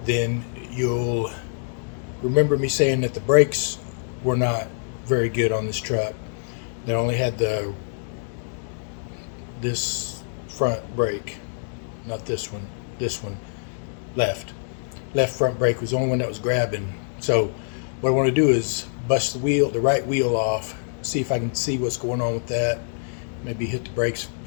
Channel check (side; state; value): right; silent; digital silence